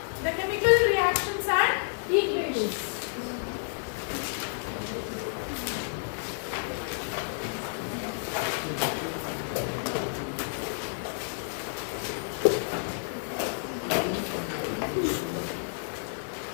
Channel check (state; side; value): silent; right; digital silence